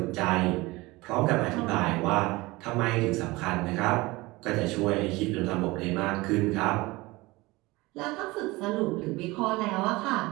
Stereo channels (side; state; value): left; quieter; 21.7 dB